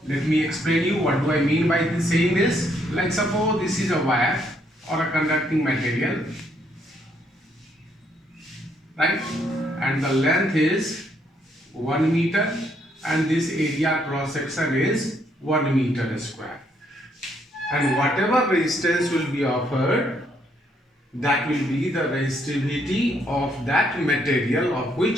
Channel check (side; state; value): both; normal; correlation 0.72